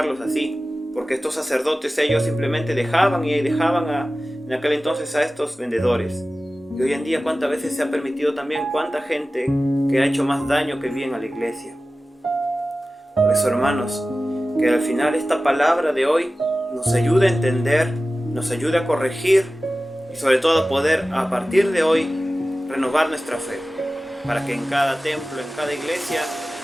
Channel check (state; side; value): normal; both; correlation 0.96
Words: así, porque estos sacerdotes ellos simplemente dejaban en aquel entonces a estos vendedores. Y hoy en día cuántas veces se ha permitido también cuánta gente que ha hecho más daño que bien a la iglesia. Por eso, hermanos, que al final esta palabra de hoy nos ayude a entender, nos ayude a corregir y sobre todo a poder a partir de hoy renovar nuestra fe, para que en cada templo, en cada iglesia